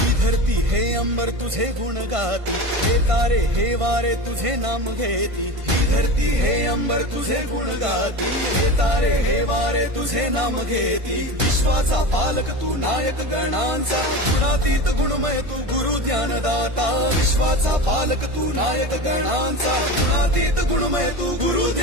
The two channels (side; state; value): left; late; 1.5 ms